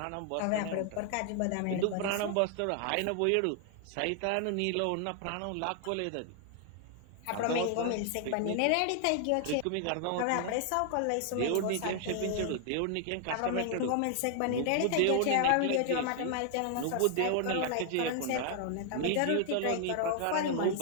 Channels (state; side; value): different; both; correlation 0.00